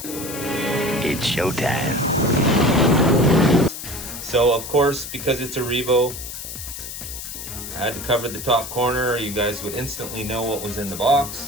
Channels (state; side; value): noise; left; hiss, 9 dB below the sound